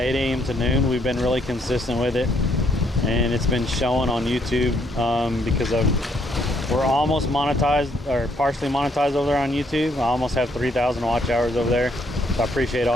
a.m. to noon. We've been really consistent with it, and it's been showing on YouTube because we're almost monetized, or partially monetized over there on YouTube. I almost have 3,000 watch hours over there, so I appreciate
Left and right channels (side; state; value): both; normal; correlation 0.70